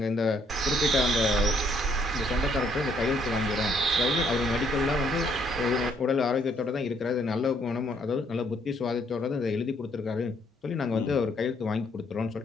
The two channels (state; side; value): normal; both; correlation 0.68